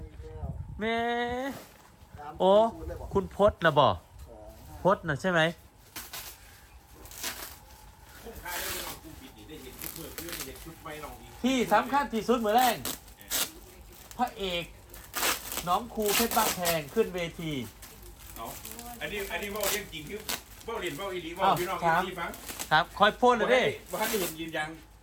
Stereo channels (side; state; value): both; identical; correlation 1.00